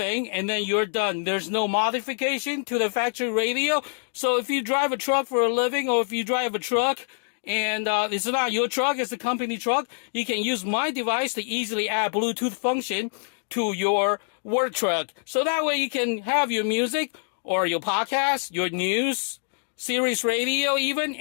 and then you're done. There's no modification to the factory radio. So if you drive a truck for a living or if you drive a truck and it's not your truck, it's a company truck, you can use my device to easily add Bluetooth function to your work truck. So that way you can have your music or your podcast, your news, Sirius radio, even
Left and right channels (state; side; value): silent; right; digital silence